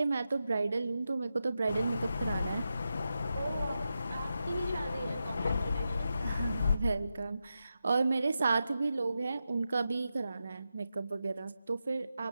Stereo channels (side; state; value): both; inverted; correlation -0.89